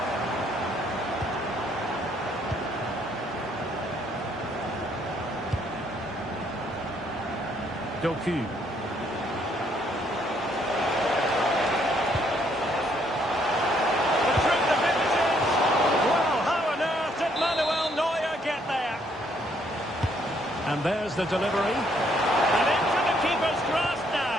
Doku. The truth of it is, well, how on earth did Manuel Neuer get there? And there's the delivery. And into the keeper's grasp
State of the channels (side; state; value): both; normal; correlation 0.68